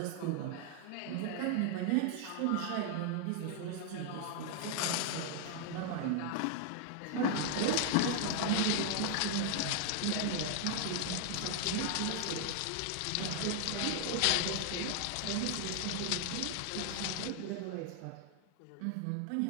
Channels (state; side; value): different; both; correlation 0.00